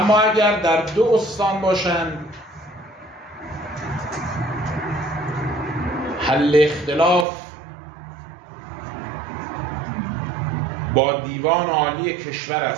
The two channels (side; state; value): left; drops out; at 7.2 s